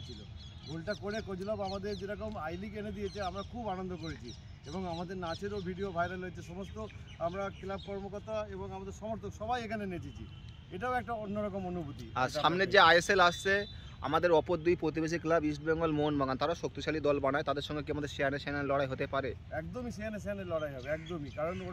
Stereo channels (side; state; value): both; identical; correlation 1.00